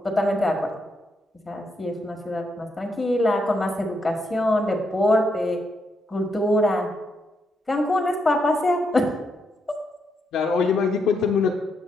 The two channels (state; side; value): normal; both; correlation 0.79